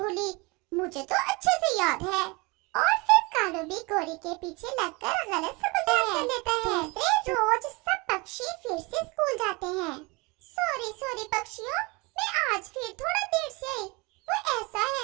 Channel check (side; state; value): left; quieter; 26.6 dB